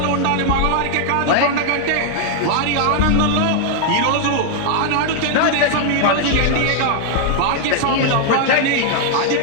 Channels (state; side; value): different; both; correlation 0.00